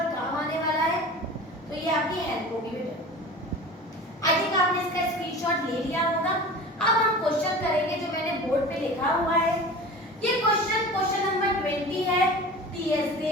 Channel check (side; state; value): both; normal; correlation 0.36